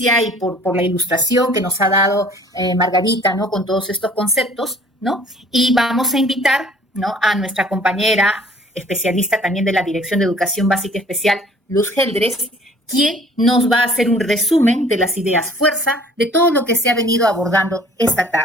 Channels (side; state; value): both; normal; correlation 0.53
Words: y por la ilustración que nos ha dado Margarita, ¿no?, con todos estos conceptos, ¿no? Y vamos a invitar, ¿no?, a nuestra compañera especialista también de la Dirección de Educación Básica Especial, Luz Geldres, quien nos va a hacer un resumen de las ideas fuerza de todo lo que se ha venido abordando esta